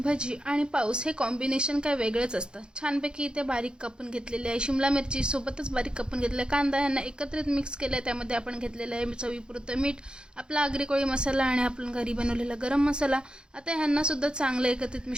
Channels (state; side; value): late; left; 0.049 ms